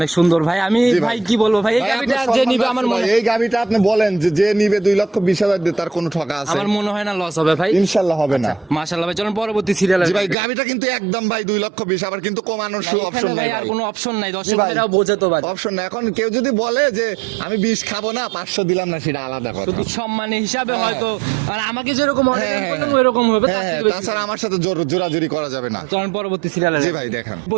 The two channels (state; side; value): drops out; left; at 10.4 s